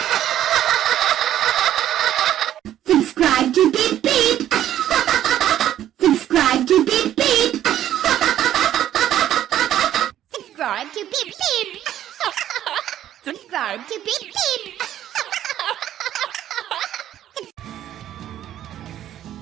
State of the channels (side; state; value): left; quieter; 11.7 dB